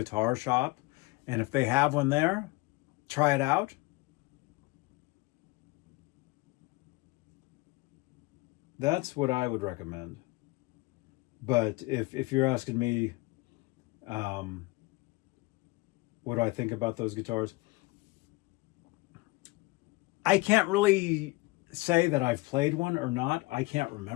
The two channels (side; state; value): right; quieter; 23.2 dB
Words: shop and if they have one there, try it out. That's what I would recommend. But if you're asking me, what do I think about those guitars? I can't really say that I've played one or not. I can't